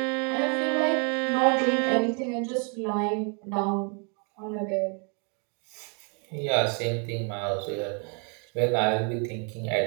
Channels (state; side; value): quieter; left; 37.3 dB